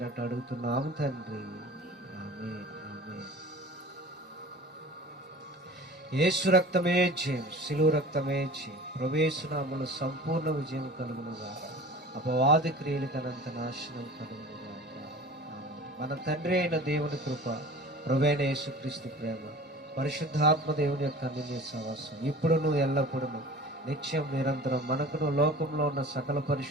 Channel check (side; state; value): both; normal; correlation 0.40